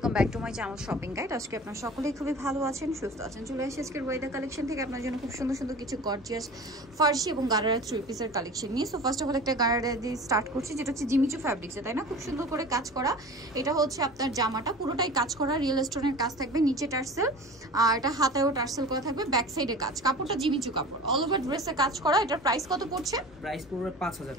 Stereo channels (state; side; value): normal; both; correlation 0.37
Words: back to my channel shopping guide. আজকে আপনারা সকলেই খুবই ভালো আছেন, সুস্থ আছেন। চলে আসি আজকের ওয়াইদা কালেকশন থেকে আপনার জন্য খুব সুন্দর সুন্দর কিছু গর্জিয়াস ফার্সি এবং গারারা থ্রি পিসের কালেকশন নিয়ে। সো ফার্স্ট অফ অল একটা গারারা দিয়ে স্টার্ট করছি, যেটা হচ্ছে জিমিচু ফ্যাব্রিক্সে, তাই না? খুব সুন্দর করে কাজ করা। এটা হচ্ছে আপনার জামাটা পুরোটাই কাজ করা, রিয়েল স্টোনের কাজ থাকবে, নিচে টার্সেল আর এটা হাতায়ও টার্সেল করা থাকবে, ব্যাক সাইডে কাজ। কাপড়টা জিমিচু কাপড়, অল ওভার ড্রেসে কাজ করা। এটার প্রাইস কত পড়ছে? প্রাইস পড়বে 5000